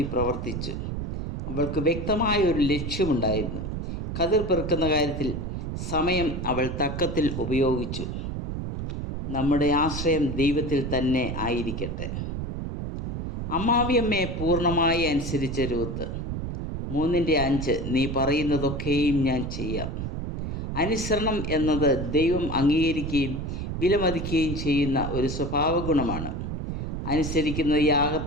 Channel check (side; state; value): right; noise; rumble, 4 dB below the sound